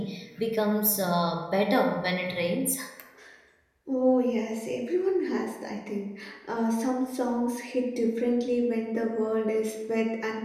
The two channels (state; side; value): identical; both; correlation 1.00